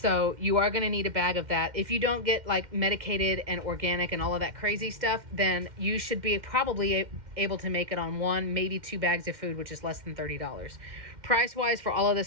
you are going to need a bag of that. If you don't get like medicated and organic and all of that crazy stuff, then you should be probably able to make it on 1, maybe 2 bags of food, which is less than $30. Price wise for all of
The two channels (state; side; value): late; left; 2.1 ms